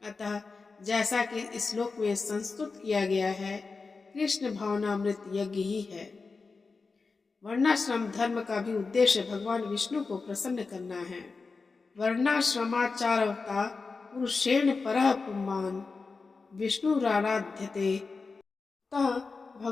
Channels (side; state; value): right; quieter; 4.3 dB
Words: अतः जैसा कि इस श्लोक में संस्तुत किया गया है, कृष्ण भावनामृत यज्ञ ही है। वर्णाश्रम धर्म का भी उद्देश्य भगवान विष्णु को प्रसन्न करना है। वर्णाश्रमाचारवता पुरुषेण परः पुमान् विष्णुराराध्यते। अतः